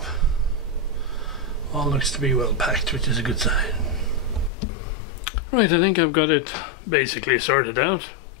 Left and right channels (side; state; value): right; drops out; at 4.5 s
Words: All looks to be well packed, which is a good sign. Right, I think I've got it basically sorted out.